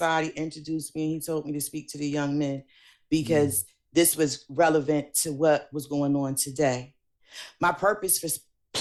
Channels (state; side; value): identical; both; correlation 1.00